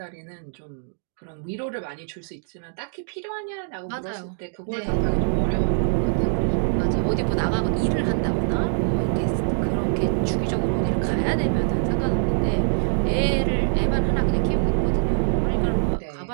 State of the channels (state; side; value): silent; left; digital silence